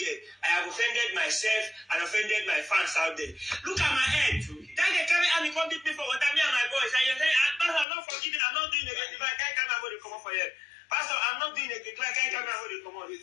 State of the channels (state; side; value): drops out; right; at 7.9 s